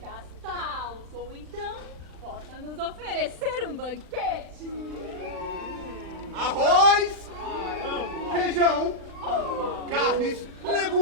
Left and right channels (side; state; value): left; late; 39 ms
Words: ou então possa nos oferecer um banquete. Arroz, feijão, carnes,